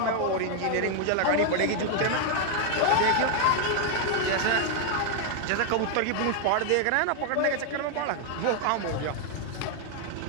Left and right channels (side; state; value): both; different; correlation 0.00